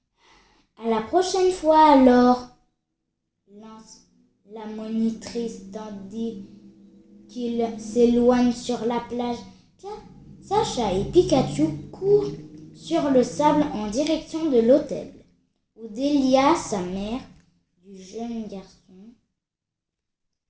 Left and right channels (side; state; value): both; identical; correlation 1.00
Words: À la prochaine fois alors, lance la monitrice tandis qu'il s'éloigne sur la plage. Tiens, Sacha et Pikachu courent sur le sable en direction de l'hôtel, où Delia, sa mère, du jeune